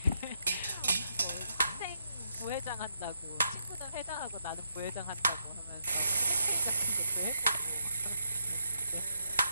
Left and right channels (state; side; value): inverted; both; correlation -0.80